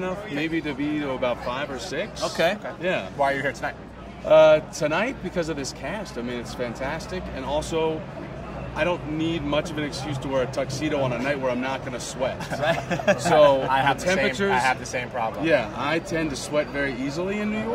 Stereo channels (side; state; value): both; identical; correlation 1.00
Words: maybe to be to about 5 or 6. Okay. Yeah. Why are you here tonight? Tonight, because of this cast. I mean, it's fantastic. And also, I don't need much of an excuse to wear a tuxedo on a night where I'm not going to sweat. So I have the temperatures. I have the same problem. Yeah, I tend to sweat very easily in New